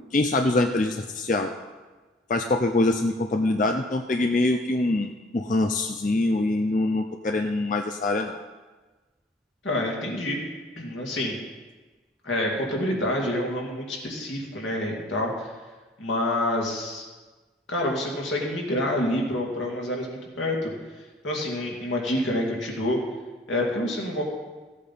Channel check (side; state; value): both; normal; correlation 0.52